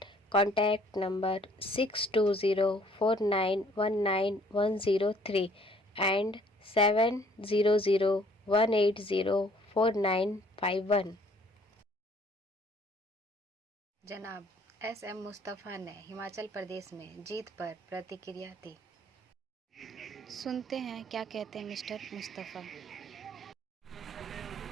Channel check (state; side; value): normal; both; correlation 0.60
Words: contact number 6204919 and 700180491। जनाब SM मुस्तफ़ा ने हिमाचल प्रदेश में जीत पर प्रतिक्रिया दी। सुनते हैं क्या कहते हैं मिस्टर मुस्तफ़ा।